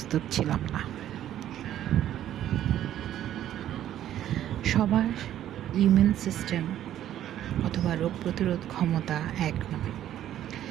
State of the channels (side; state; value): left; quieter; 11.8 dB